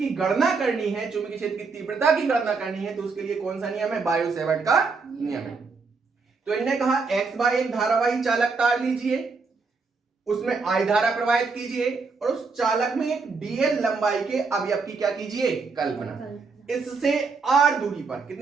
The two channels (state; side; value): quieter; left; 4.5 dB